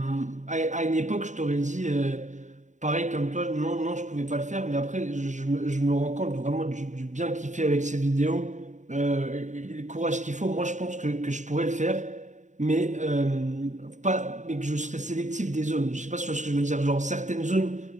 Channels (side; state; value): left; late; 0.35 ms